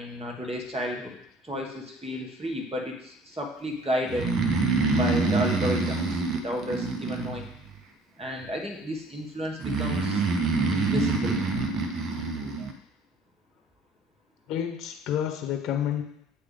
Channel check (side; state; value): both; normal; correlation 0.53